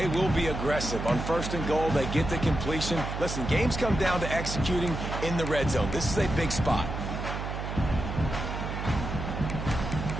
will be aggressive. On 1st and goal, they get the completion. Listen, games come down to executing in the red zone. This is a big spot.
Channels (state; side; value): noise; right; hum, 5 dB below the sound